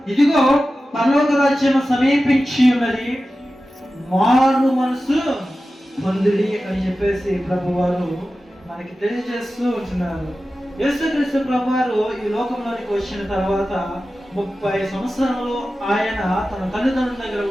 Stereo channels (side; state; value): both; normal; correlation 0.94